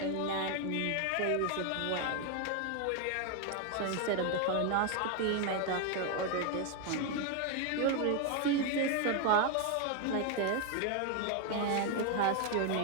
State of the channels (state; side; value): different; both; correlation 0.01